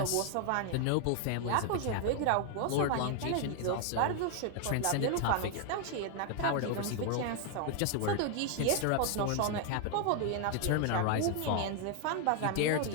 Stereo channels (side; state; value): both; different; correlation 0.00